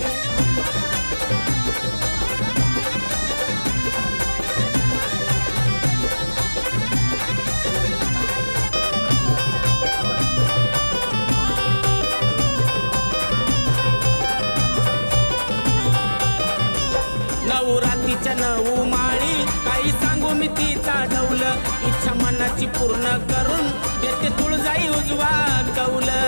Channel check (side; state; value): both; inverted; correlation -1.00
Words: नवरात्रीच्या 9 माळी काही सांगू मी तिचा ढौल, इच्छा मनाची पूर्ण करून देते तुळजाई उजवा कौल.